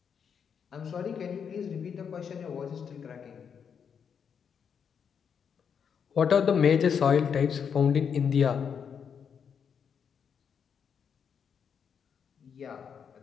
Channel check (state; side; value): quieter; right; 7.1 dB